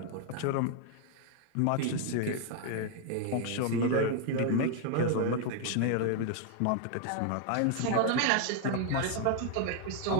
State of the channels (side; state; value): both; different; correlation 0.00